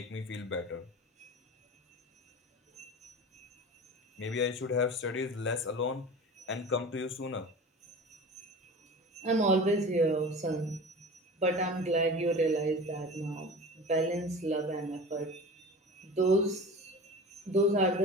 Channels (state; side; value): normal; both; correlation 0.35